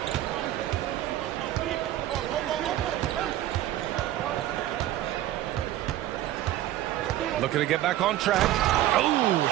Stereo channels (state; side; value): quieter; left; 13.7 dB